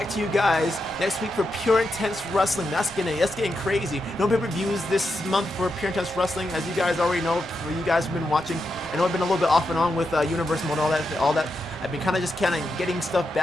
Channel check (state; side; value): normal; both; correlation 0.85